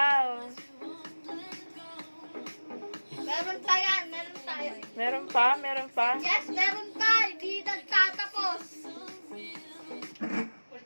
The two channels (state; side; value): inverted; both; correlation -1.00